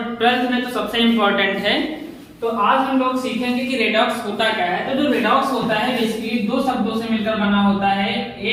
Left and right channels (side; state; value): both; identical; correlation 1.00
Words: 12th में तो सबसे इम्पोर्टेंट है। तो आज हम लोग सीखेंगे कि रेडॉक्स होता क्या है। तो जो रेडॉक्स होता है बेसिकली दो शब्दों से मिलकर बना होता है।